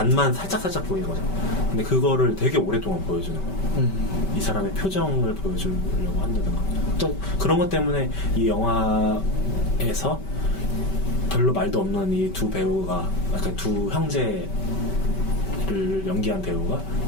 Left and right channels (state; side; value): late; right; 5.2 ms